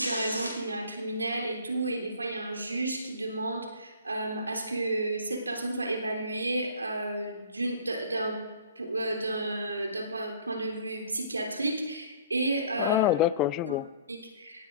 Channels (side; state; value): both; inverted; correlation -0.50